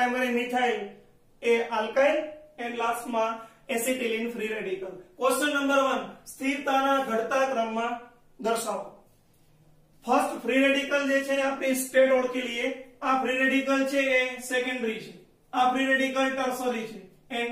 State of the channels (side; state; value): both; identical; correlation 1.00